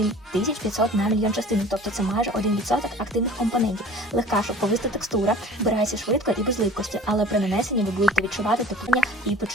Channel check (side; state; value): both; normal; correlation 0.45